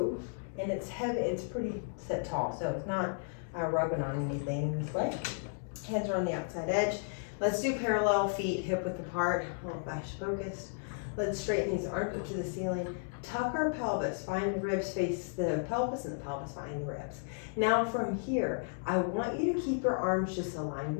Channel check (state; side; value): silent; right; digital silence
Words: and it's heavy. It's pretty set tall, so it's not rubbing on anything this way. Hands are on the outside edge. Let's do parallel feet, hip width apart, a little fascia focused. Let's straighten these arms up to the ceiling. Tuck our pelvis. Find the ribs face the pelvis, and the pelvis find the ribs. Now from here, I want you to keep your arms just aligned